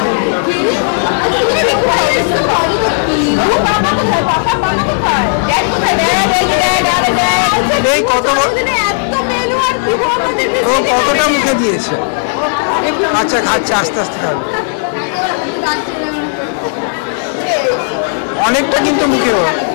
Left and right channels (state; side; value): silent; right; digital silence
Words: এই কতটা মুখে দিয়েছে? আচ্ছা খাচ্ছে, আস্তে আস্তে খাবে। অনেকটা কিন্তু মুখে,